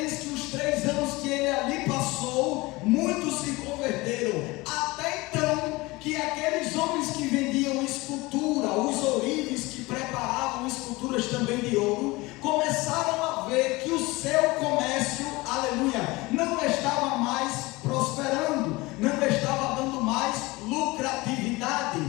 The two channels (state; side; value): quieter; right; 22.2 dB